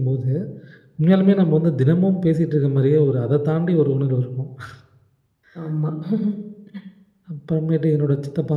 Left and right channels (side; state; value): both; identical; correlation 1.00